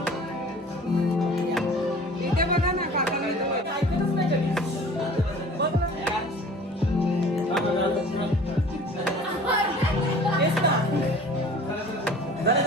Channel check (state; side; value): normal; both; correlation 0.46